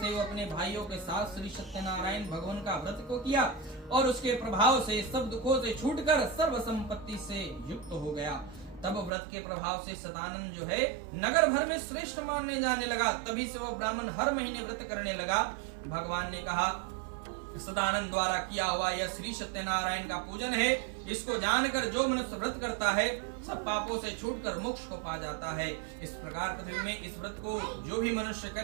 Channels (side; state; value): left; drops out; at 9.1 s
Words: वो अपने भाइयों के साथ श्री सत्यनारायण भगवान का व्रत को किया और उसके प्रभाव से सब दुखों से छूटकर सर्व संपत्ति से युक्त हो गया। तब व्रत के प्रभाव से सदानंद जो है नगर भर में श्रेष्ठ मानने जाने लगा। तभी से वो ब्राह्मण हर महीने व्रत करने लगा। भगवान ने कहा, सदानंद द्वारा किया हुआ यह श्री सत्यनारायण का पूजन है। इसको जानकर जो मनुष्य व्रत करता है सब पापों से छूटकर मोक्ष को पा जाता है। इस प्रकार पृथ्वी में इस व्रत को जो भी मनुष्य